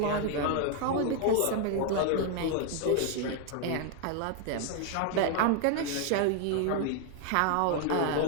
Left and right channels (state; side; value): different; both; correlation 0.00